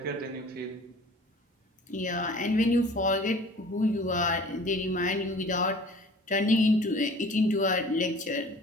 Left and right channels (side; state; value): both; normal; correlation 0.47